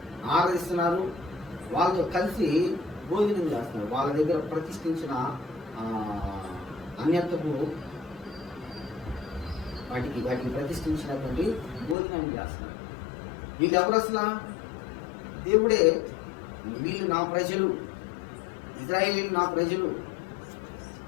ఆరాధిస్తున్నారు, వాళ్ళతో కలిసి భోజనం చేస్తున్నారు. వాళ్ళ దగ్గర ప్రతిష్ఠించిన అన్యత్వపు వాటికి ప్రతిష్ఠించినటువంటి భోజనాన్ని చేస్తున్నారు. వీళ్ళు ఎవరు అసలు? దేవుడే, వీళ్ళు నా ప్రజలు, ఇశ్రాయేలీయులు నా ప్రజలు,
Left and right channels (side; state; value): right; drops out; at 12.0 s